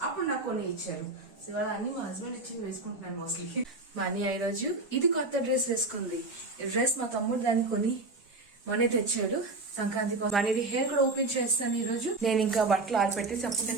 అప్పుడు నాకు కొన్ని ఇచ్చారు. సో ఇవాళ అన్ని మా హస్బెండ్ ఇచ్చింది వేసుకుంటున్నాను మోస్ట్లీ. మా అన్నయ్య ఈ రోజు ఇది కొత్త డ్రెస్ వేసుకుంది. ఈ డ్రెస్ మా తమ్ముడు దాన్ని కొని మనీ తెచ్చాడు సంక్రాంతి కోసం. మనీది హెయిర్ కూడా ఓపెన్ చేస్తాను ఈ రోజు. నేను ఇంకా బట్టలు ఆరిపెట్టేసి అప్పుడు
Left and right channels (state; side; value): quieter; left; 3.3 dB